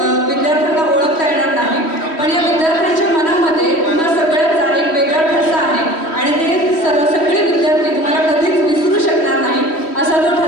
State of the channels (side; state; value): right; late; 3.1 ms